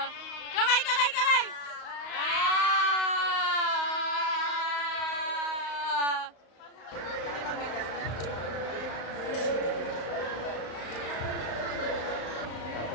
Kamay, kamay, kamay!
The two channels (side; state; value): right; late; 35 ms